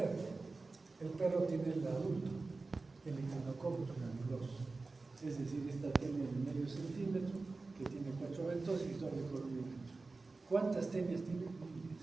El perro tiene el adulto, el Echinococcus granulosus. Es decir, esta tiene de medio centímetro, que tiene 4 ventosas y doble córneo ancho. ¿Cuántas tenias tiene?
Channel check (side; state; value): left; quieter; 3.7 dB